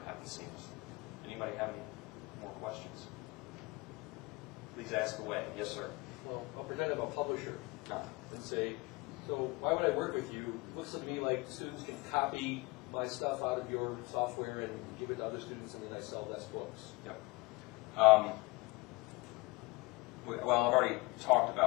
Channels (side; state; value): right; quieter; 24.6 dB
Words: happens seamlessly. Anybody have any more questions? Please ask away. Yes, sir. Well, I'll pretend I'm a publisher No. and say, so why would I work with you? It looks to me like students can copy my stuff out of your software and give it to other students, and then I sell less books. Yep. Well, I've already talked